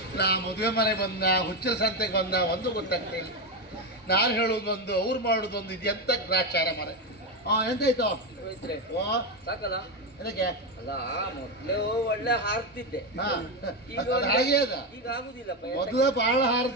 ನಾ ಮದುವೆ ಮನೆ ಬಂದ, ಹುಚ್ಚರ ಸಂತೆಗೆ ಬಂದ, ಒಂದು ಗೊತ್ತಾಗ್ತಿಲ್ಲ. ನಾನು ಹೇಳೋದೊಂದು, ಅವ್ರು ಮಾಡೋದೊಂದು. ಇದು ಎಂತ ಗ್ರಾಚಾರ ಮರೆ. ಎಂತಾಯ್ತು? ಸಾಕಲ್ಲ ಅದಕ್ಕೆ ಅಲ್ಲ, ಮೊದ್ಲು ಒಳ್ಳೆ ಹಾರ್ತಿದ್ದೆ. ಹಾಗೆ ಅದ. ಈಗ ಆಗುದಿಲ್ಲ. ಮೊದಲ ಬಹಳ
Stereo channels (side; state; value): both; normal; correlation 0.11